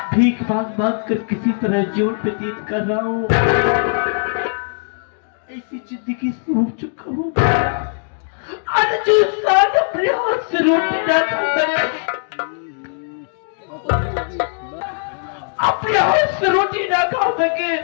भीख मांग मांग कर किसी तरह जीवन व्यतीत कर रहा हूँ। ऐसी जिंदगी से हो चुका हूँ, और जो इंसान अपने हाथ से रोटी ना खाता है, अपने हाथ से रोटी ना खा सके,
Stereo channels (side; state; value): right; silent; digital silence